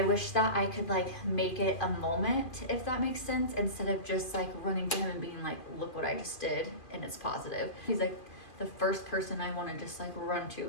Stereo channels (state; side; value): late; right; 2.5 ms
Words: wish that I could like make it a moment, if that makes sense, instead of just like running to him and being like, look what I just did and it's positive. He's like the first person I want to just like run to